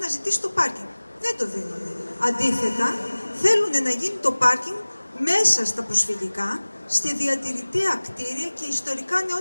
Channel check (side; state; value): both; inverted; correlation -1.00